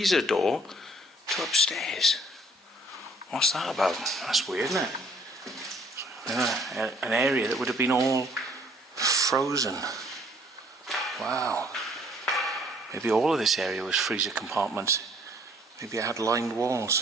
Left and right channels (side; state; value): both; normal; correlation 0.60